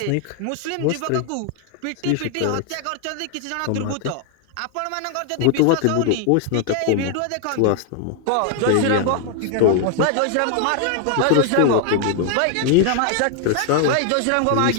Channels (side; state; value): both; different; correlation 0.00